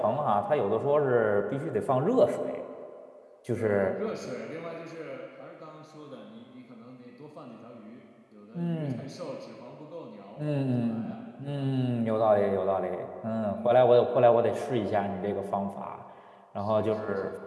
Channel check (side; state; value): both; identical; correlation 1.00